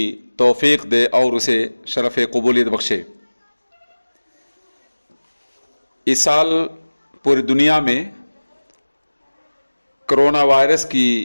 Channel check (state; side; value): inverted; both; correlation -1.00